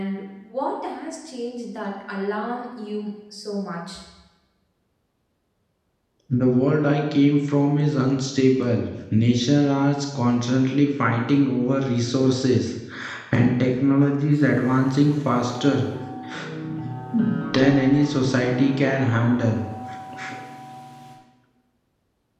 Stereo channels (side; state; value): both; identical; correlation 1.00